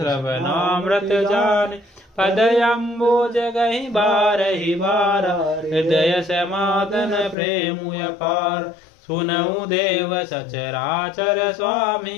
जाने। पदयम्बुज गहि बारहि बारा हृदय समादन प्रेमु अपार। सुनऊ देव सचराचर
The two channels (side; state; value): right; drops out; at 7.4 s